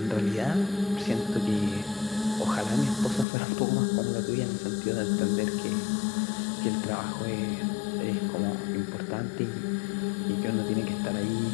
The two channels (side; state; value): right; drops out; at 3.2 s